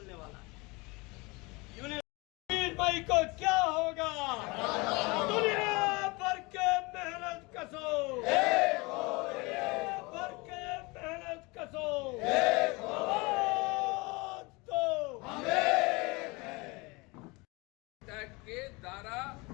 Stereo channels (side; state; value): right; quieter; 25.7 dB